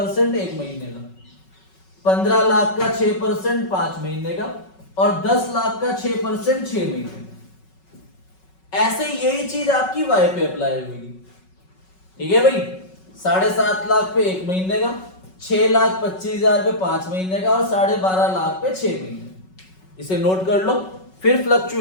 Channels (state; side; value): late; right; 5.4 ms